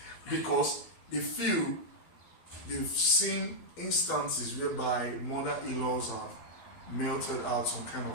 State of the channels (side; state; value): right; late; 12 ms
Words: Because they feel they've seen instances whereby mother-in-laws have melted out some kind